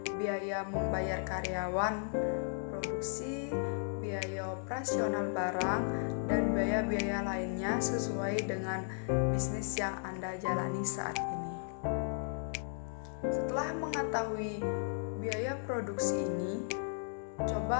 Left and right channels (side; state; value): right; silent; digital silence